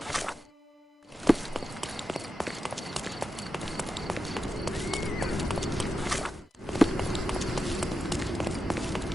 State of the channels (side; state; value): both; normal; correlation 0.89